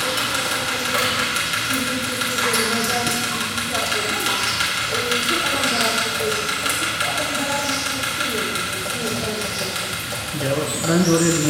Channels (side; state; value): both; identical; correlation 1.00